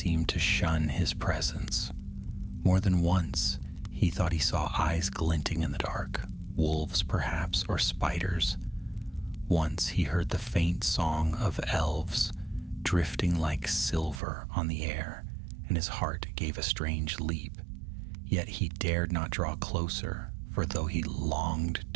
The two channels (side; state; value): left; drops out; at 14.2 s